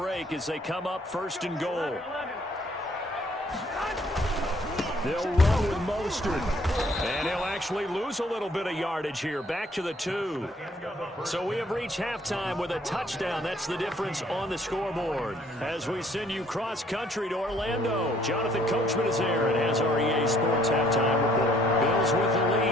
as they come up 1st and goal. They'll run with Mostert. And he'll actually lose a little bit of yardage here. Back to the 2. So we have reached halftime with a touchdown. That's the difference on the scoreboard. As we send you cross-country to Orlando, Jonathan Coachman is there and has our EA Sports halftime report. Bills with the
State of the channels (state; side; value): normal; both; correlation 0.63